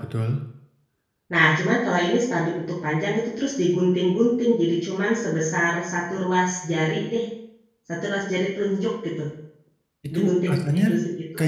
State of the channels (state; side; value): identical; both; correlation 1.00